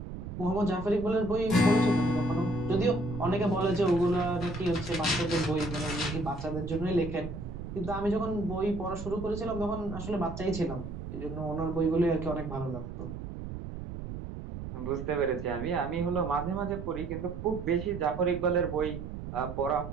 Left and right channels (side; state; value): right; noise; rumble, 8 dB below the sound